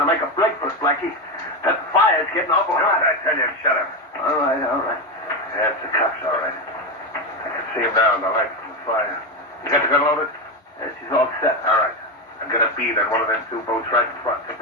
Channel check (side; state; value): both; normal; correlation 0.13